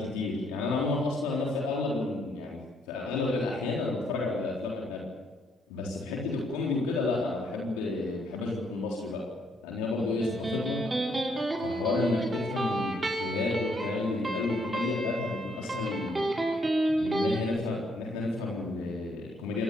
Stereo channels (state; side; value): normal; both; correlation 0.71